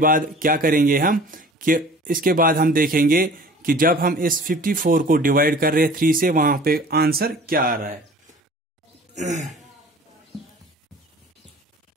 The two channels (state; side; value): normal; both; correlation 0.46